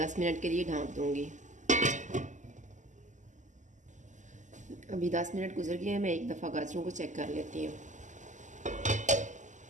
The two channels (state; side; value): late; left; 0.36 ms